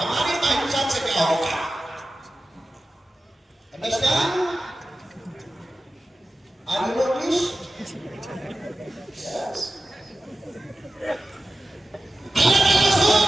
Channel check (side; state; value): both; normal; correlation 0.93